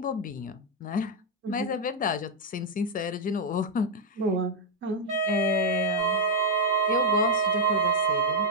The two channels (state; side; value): normal; both; correlation -0.01